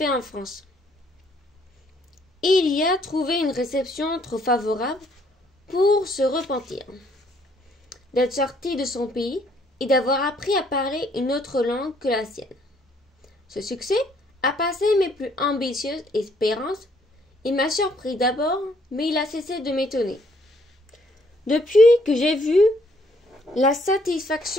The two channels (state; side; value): normal; both; correlation 0.66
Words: en France. Il y a trouvé une réception trop favorable pour se repentir d'être sorti de son pays et d'avoir appris à parler une autre langue que la sienne. Ce succès a passé mes plus ambitieuses espérances. Il m'a surpris d'abord, mais il a cessé de m'étonner. Depuis que j'ai vu la